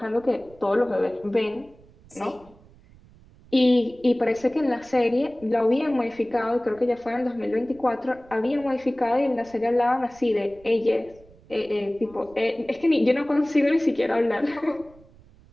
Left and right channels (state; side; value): noise; right; rumble, 26 dB below the sound